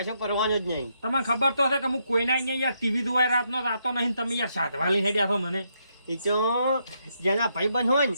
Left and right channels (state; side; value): inverted; both; correlation -0.78